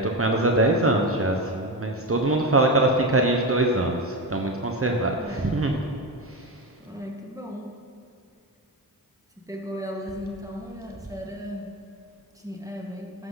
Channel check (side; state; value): both; normal; correlation 0.17